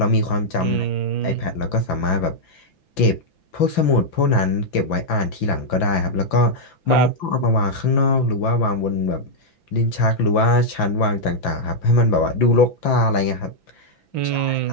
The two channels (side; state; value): right; late; 5.9 ms